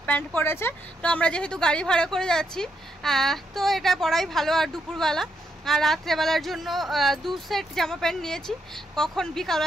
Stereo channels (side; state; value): both; normal; correlation 0.78